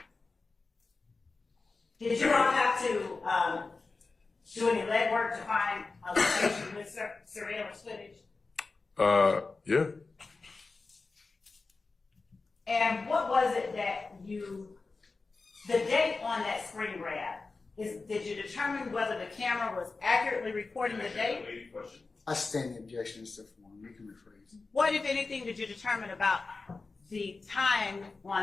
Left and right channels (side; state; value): right; quieter; 3.9 dB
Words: Did you all have to do any legwork to find a location with surveillance footage? Yeah. And what was it that the date on that screen grab, did you determine whether the camera was accurately recording the date? I stand the objection, Mr. Form. You can rephrase. What, if anything, did you determine about the time